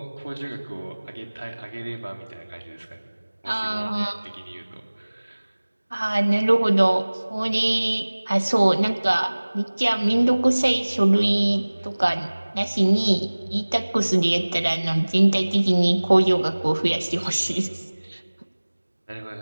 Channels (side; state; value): both; inverted; correlation -1.00